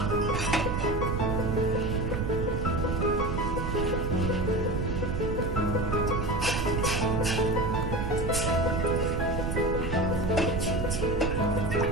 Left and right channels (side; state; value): right; noise; rumble, 2 dB below the sound